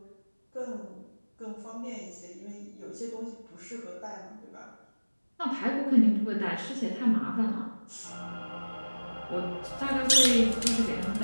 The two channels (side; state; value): both; inverted; correlation -1.00